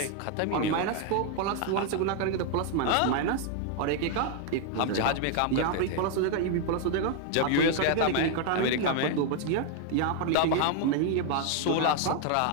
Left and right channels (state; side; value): different; both; correlation 0.00